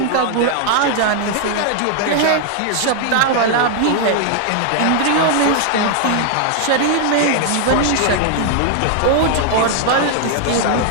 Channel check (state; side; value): different; both; correlation 0.00